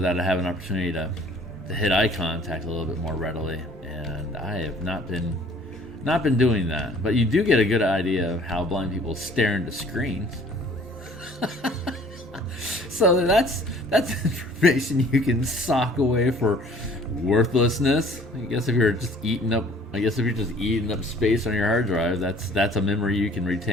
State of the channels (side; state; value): both; normal; correlation 0.53